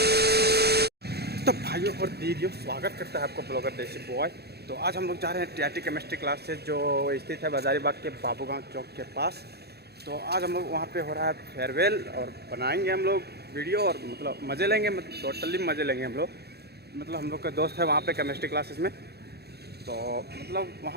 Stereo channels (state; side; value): late; left; 0.47 ms